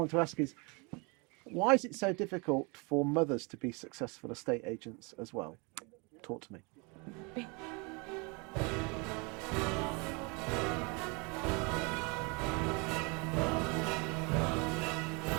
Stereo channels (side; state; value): left; quieter; 30.5 dB